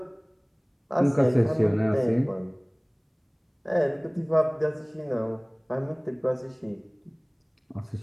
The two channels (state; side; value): identical; both; correlation 1.00